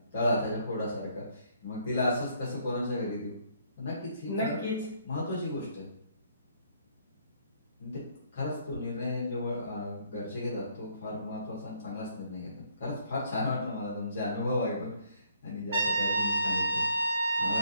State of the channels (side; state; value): both; inverted; correlation -0.66